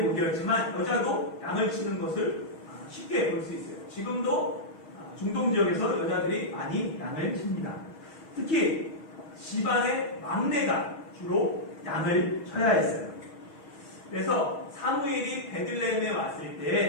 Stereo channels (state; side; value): late; right; 6.3 ms